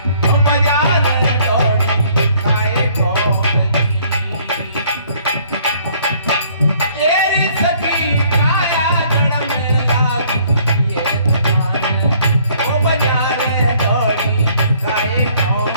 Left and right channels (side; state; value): both; inverted; correlation -0.61